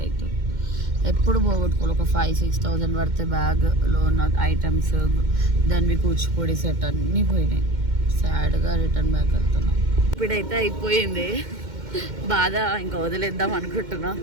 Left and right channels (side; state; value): left; late; 2.1 ms